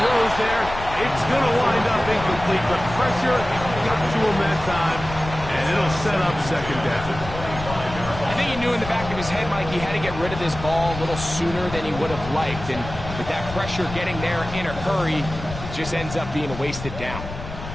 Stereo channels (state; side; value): noise; left; rumble, 10 dB below the sound